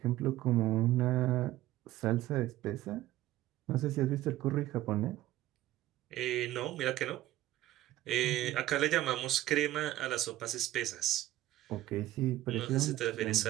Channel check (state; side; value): quieter; left; 15.2 dB